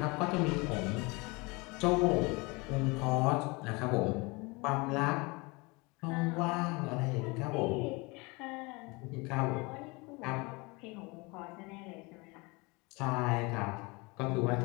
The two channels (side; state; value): right; quieter; 26.6 dB